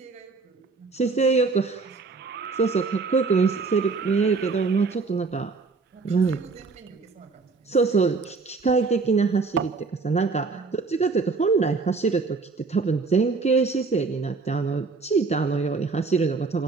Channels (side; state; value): left; quieter; 4.3 dB